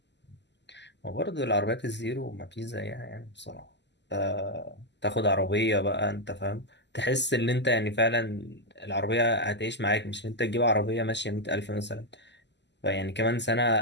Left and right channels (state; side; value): late; right; 0.51 ms